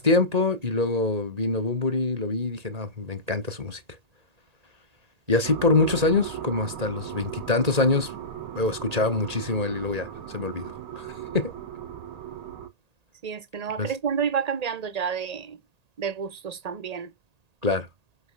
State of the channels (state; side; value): late; left; 1.8 ms